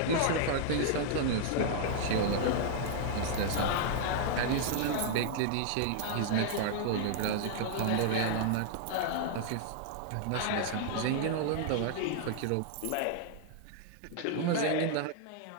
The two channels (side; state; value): both; different; correlation -0.01